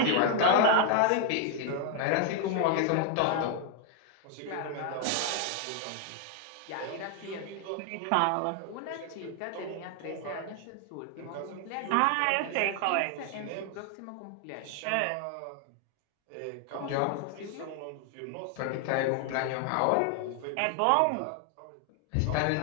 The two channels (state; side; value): different; both; correlation 0.00